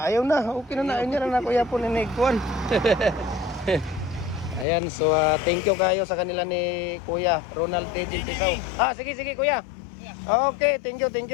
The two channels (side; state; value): right; drops out; at 4.7 s